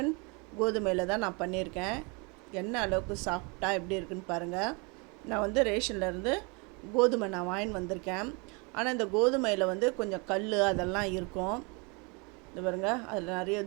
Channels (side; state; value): left; quieter; 31.0 dB